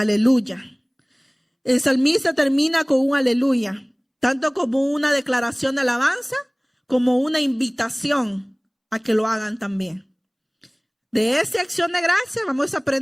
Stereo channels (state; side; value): identical; both; correlation 1.00